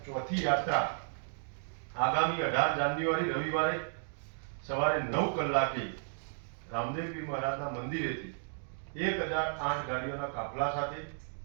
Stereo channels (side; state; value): left; silent; digital silence